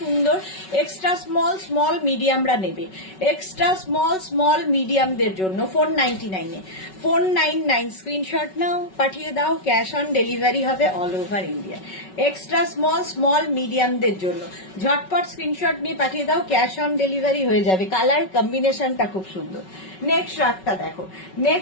এক্সট্রা স্মল স্মল মিডিয়ামরা নেবে, এক্সট্রা স্মল স্মল মিডিয়ামদের জন্য 499 এ। 499, স্ক্রিনশট নাও, পাঠিয়ে দাও, ক্যাশ অন ডেলিভারি হবে all over India. Extra small small মিডিয়ামদের জন্য ঝটপট স্ক্রিনশট নিয়ে পাঠিয়ে দাও, ক্যাশ অন ডেলিভারি হয়ে যাবে। কালার কম্বিনেশনটা খুব সুন্দর। নেক্সট শ্রাগটা দেখো,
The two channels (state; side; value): late; right; 5.3 ms